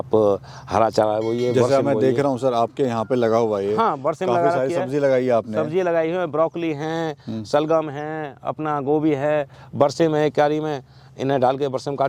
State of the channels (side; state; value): both; identical; correlation 1.00